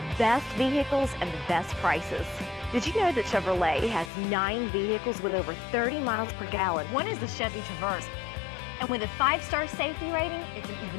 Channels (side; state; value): right; drops out; at 4.1 s